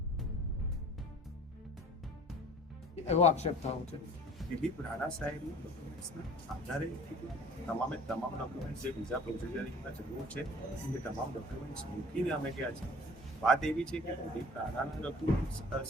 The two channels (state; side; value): normal; both; correlation 0.47